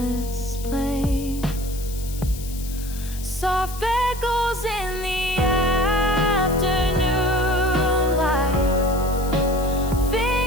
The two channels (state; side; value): noise; left; hiss, 14 dB below the sound